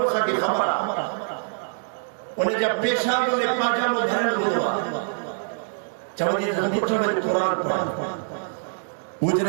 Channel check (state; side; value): silent; left; digital silence